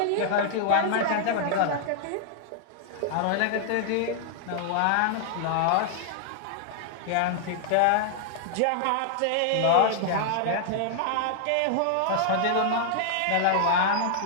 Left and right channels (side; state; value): both; different; correlation -0.01